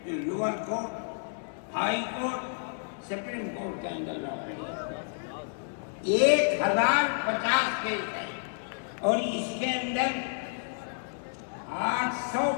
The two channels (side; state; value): right; silent; digital silence